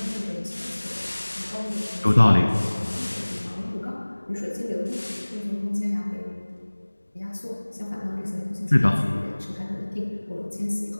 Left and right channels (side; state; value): both; inverted; correlation -1.00